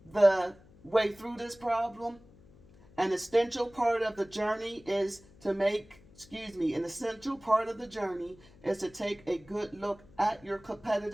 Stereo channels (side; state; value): left; noise; hum, 25 dB below the sound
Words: the way through this problem. An essential part of the journey is to take a good look at your